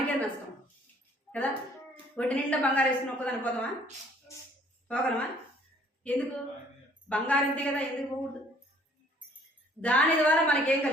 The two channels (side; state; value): both; normal; correlation 0.58